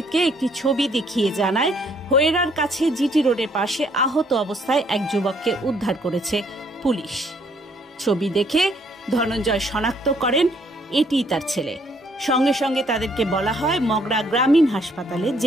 একটি ছবি দেখিয়ে জানায়, হোয়েরার কাছে জিটি রোডের পাশে আহত অবস্থায় এক যুবককে উদ্ধার করেছে পুলিশ। ছবি দেখে ধনঞ্জয় শনাক্ত করেন এটিই তার ছেলে। সঙ্গে সঙ্গে তাদেরকে বলা হয় মগরা গ্রামীণ হাসপাতালে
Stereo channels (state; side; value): normal; both; correlation 0.66